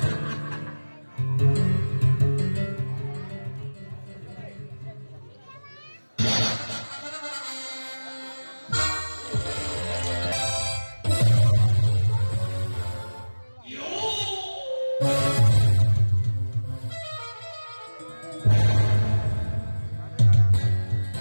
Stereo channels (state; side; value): inverted; both; correlation -1.00